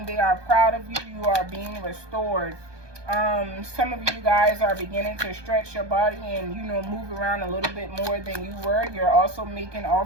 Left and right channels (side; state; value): left; late; 1.2 ms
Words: they are proud of you. You are being restored. Some of you guys are beginning to stretch your body and, you know, move around a little bit more than you were. You're also making